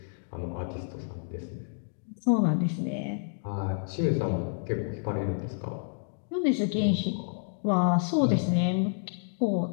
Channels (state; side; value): silent; right; digital silence